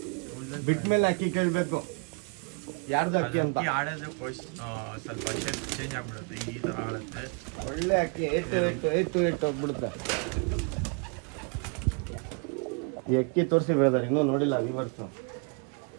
ಬಿಟ್ಮೇಲೆ ಅಕ್ಕಿ ಕೇಳಬೇಕು ಯಾರ್ದು ಅಕ್ಕಿ ಅಂತ. ಆಡೋದು ಸ್ವಲ್ಪ ಚೇಂಜ್ ಆಗ್ಬಿಡುತ್ತೆ. ಈ ತರ ಆಡುತ್ತೆ. ಒಳ್ಳೆ ಅಕ್ಕಿ ಏಟು ಹೋಗ್ಬಿಡುತ್ತೆ. ಈ ಅಕ್ಕಿ ತೋರಿಸಿ ಬ್ರದರ್, ಇನ್ನೂ ನೋಡಿಲ್ಲ ವ್ಯೂವರ್ಸು.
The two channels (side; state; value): left; quieter; 35.2 dB